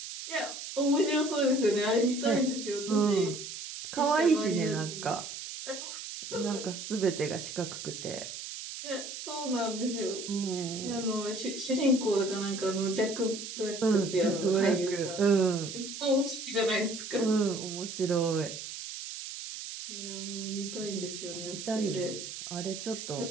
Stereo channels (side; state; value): right; noise; hiss, 9 dB below the sound